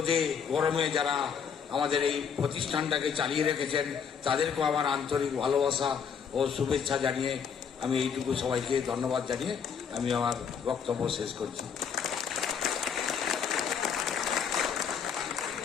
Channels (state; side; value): quieter; right; 7.0 dB